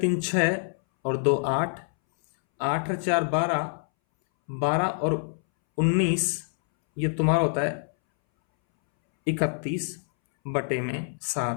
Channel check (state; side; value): silent; right; 61 dB below the other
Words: 3 6 और 2 8, 8 और 4 12, 12 और 19, ये तुम्हारा होता है 31 बटे में